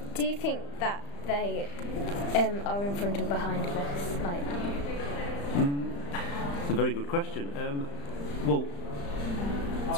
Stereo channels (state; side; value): late; right; 35 ms